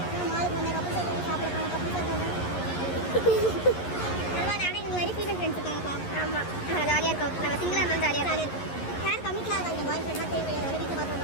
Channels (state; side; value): late; right; 11 ms